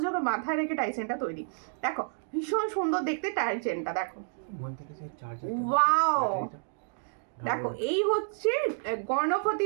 মাথায় রেখে টাইচেনটা তৈরি। দেখো ভীষণ সুন্দর দেখতে টাইচেনটা, দেখো ওয়াও। দেখো এই হচ্ছে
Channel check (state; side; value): silent; left; digital silence